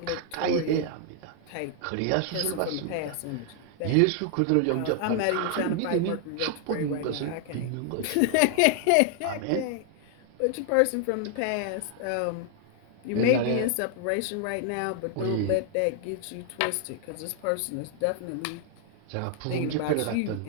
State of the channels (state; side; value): different; both; correlation 0.00